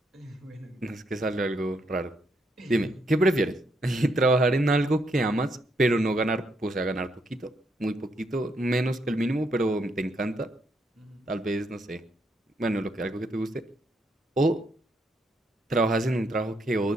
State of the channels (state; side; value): normal; both; correlation 0.76